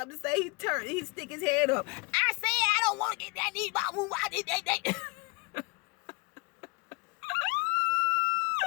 to say, he stick his head up. I said I don't want to get that knee ball move. I did that.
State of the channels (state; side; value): quieter; right; 28.5 dB